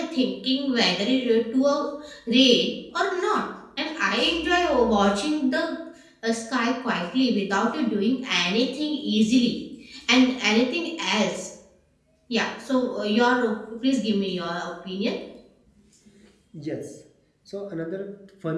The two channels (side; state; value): both; identical; correlation 1.00